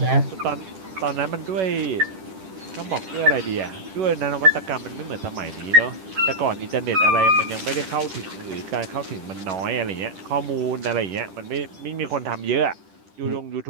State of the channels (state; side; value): late; left; 10 ms